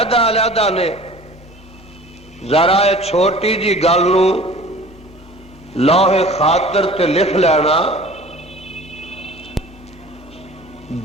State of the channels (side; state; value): both; normal; correlation 0.44